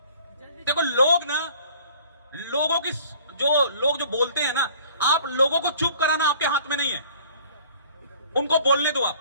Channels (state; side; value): inverted; both; correlation -0.53